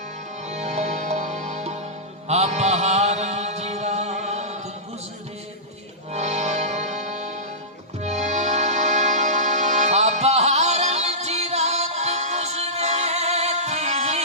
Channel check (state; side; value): normal; both; correlation -0.18